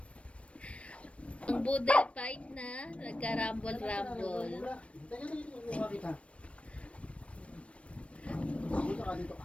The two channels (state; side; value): late; right; 0.062 ms